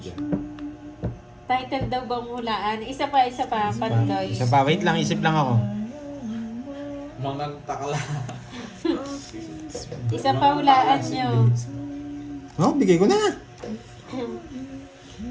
Title daw bang hulaan? Isa pa, Pandoy. Isa pa, wait lang, isip lang ako. Mga takla. Isa pa hulaan nyo. Oh, bigay ko na.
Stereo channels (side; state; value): both; identical; correlation 1.00